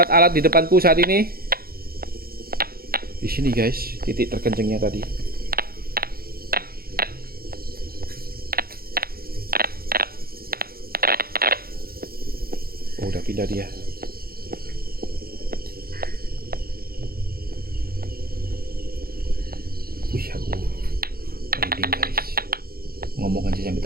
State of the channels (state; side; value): late; left; 0.44 ms